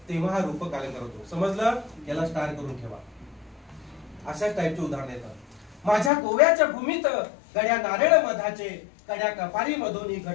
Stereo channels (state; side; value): drops out; right; at 6.1 s